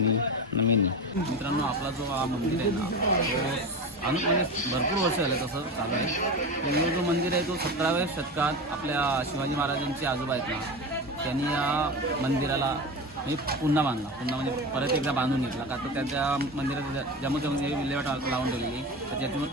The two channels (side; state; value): both; normal; correlation 0.25